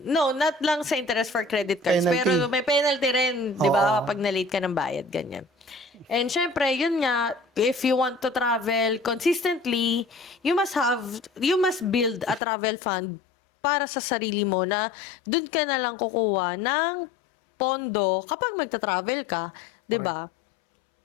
No, not lang sa interest for credit cards. Penalty. Pero may penalty rin, di ba? Oo. Pag na-late ka ng bayad, ganyan. And syempre, yun nga, if you want to travel consistently, you must build a travel fund para sa sarili mo na dun ka na lang kukuha ng pondo kapag magta-travel ka. Di ba?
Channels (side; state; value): right; drops out; at 12.4 s